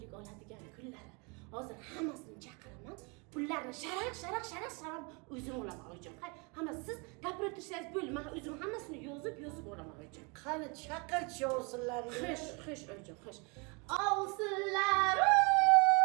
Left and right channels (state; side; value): quieter; left; 31.2 dB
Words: oladigan kunlari. Hozir hammasini chaqiraman. Pullarni sharaq o'zim olaman oyjon. Hamma siz gapirib tursangiz bo'ldi. Men o'zim hammasini yozib olaman oyjon. Qani chaqirchi ovsinlaringni. Xish oyjon, xish. Ovsinlar!